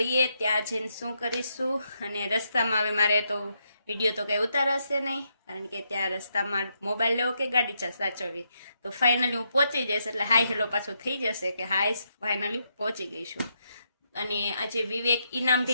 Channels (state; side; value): inverted; both; correlation -0.79